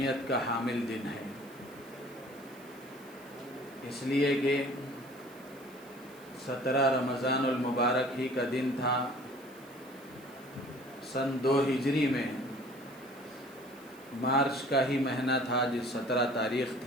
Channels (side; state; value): right; noise; hiss, 24 dB below the sound